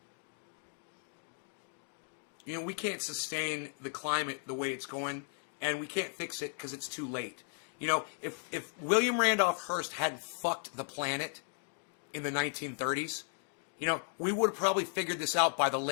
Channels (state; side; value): silent; right; 54 dB below the other